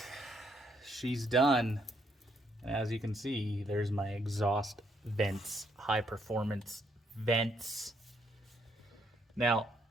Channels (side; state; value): both; normal; correlation 0.73